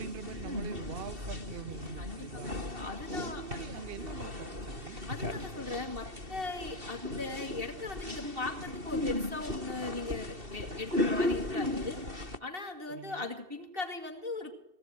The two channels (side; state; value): left; late; 2.7 ms